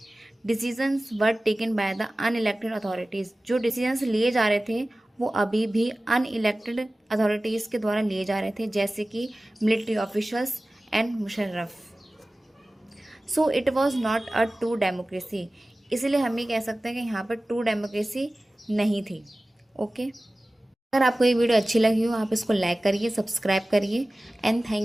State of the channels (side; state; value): both; normal; correlation 0.97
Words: Decisions were taken by the unelected authorities, जो डिसीजंस लिए जा रहे थे वो अभी भी अनइलेक्टेड अथॉरिटीज़ के द्वारा लिए जा रहे थे, जैसे कि military officials and Musharraf. So it was not a true democracy, इसीलिए हम ये कह सकते हैं कि यहाँ पर ट्रू डेमोक्रेसी नहीं थी। ओके, अगर आपको ये वीडियो अच्छी लगी हो आप इसको लाइक करिए, सब्सक्राइब करिए and